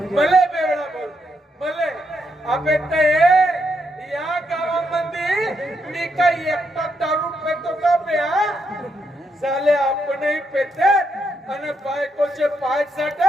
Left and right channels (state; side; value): normal; both; correlation 0.79